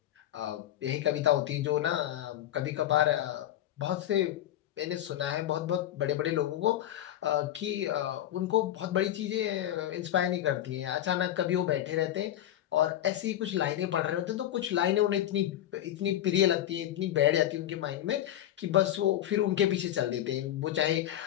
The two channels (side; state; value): right; quieter; 12.3 dB